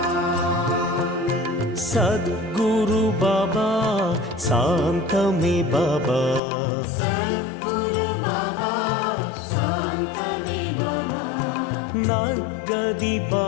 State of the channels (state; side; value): drops out; right; at 6.4 s